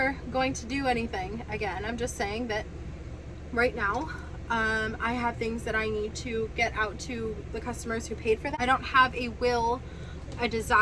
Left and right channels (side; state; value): both; identical; correlation 1.00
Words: going to do anything again. I'm just saying that right now I have things that I need to get out to the customers who paid for that. I don't have a will, a